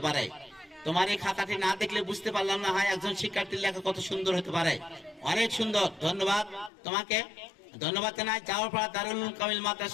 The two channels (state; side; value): drops out; right; at 6.7 s